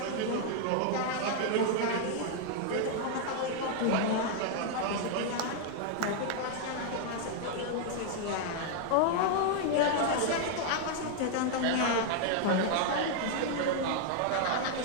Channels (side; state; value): both; different; correlation 0.00